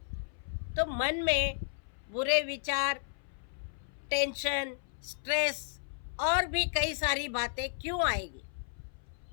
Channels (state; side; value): silent; right; 55 dB below the other